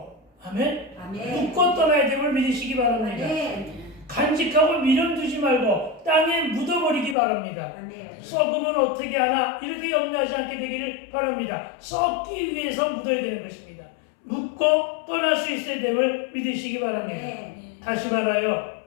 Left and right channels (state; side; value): drops out; right; at 7.2 s